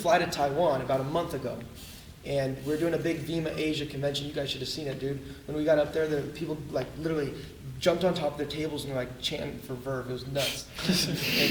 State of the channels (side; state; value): both; identical; correlation 1.00